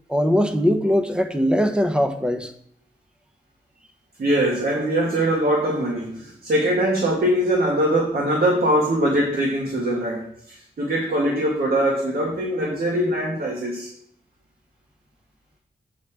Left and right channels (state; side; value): normal; both; correlation 0.55